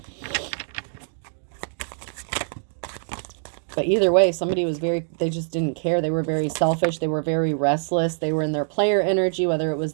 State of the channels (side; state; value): left; silent; digital silence